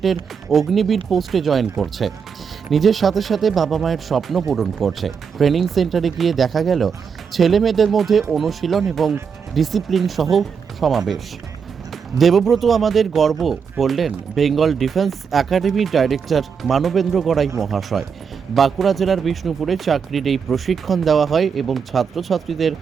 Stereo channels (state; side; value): quieter; left; 6.4 dB